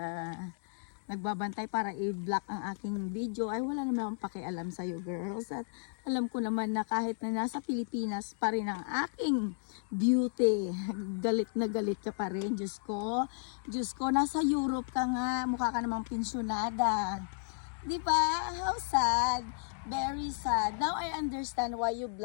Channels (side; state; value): right; silent; digital silence